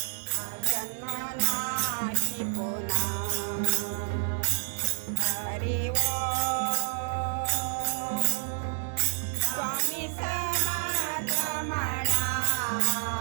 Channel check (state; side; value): silent; left; digital silence